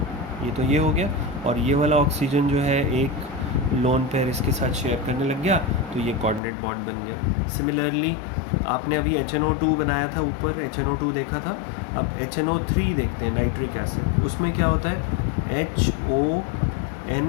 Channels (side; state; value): right; drops out; at 6.4 s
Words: ये तो ये हो गया. और ये वाला ऑक्सीजन जो है एक लोन पेयर इसके साथ शेयर करने लग गया, तो ये कोऑर्डिनेट बॉन्ड बन गया. सिमिलरली आपने अभी HNO2 बनाया था, ऊपर HNO2 देखा था. अब HNO3 देखते हैं, नाइट्रिक एसिड. उसमें क्या होता है,